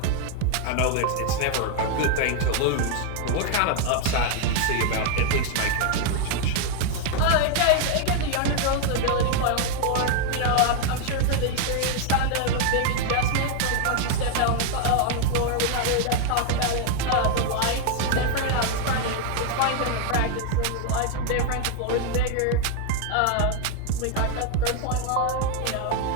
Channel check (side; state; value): both; different; correlation 0.01